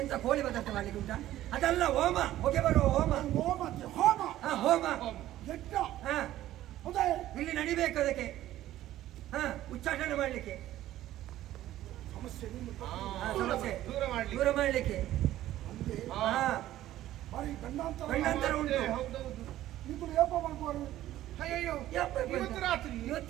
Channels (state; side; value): quieter; left; 13.9 dB